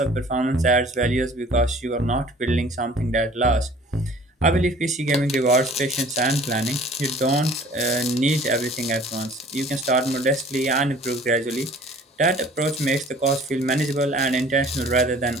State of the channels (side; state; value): both; normal; correlation 0.50